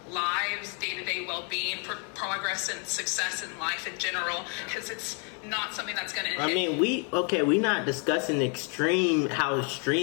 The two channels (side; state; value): right; quieter; 38.1 dB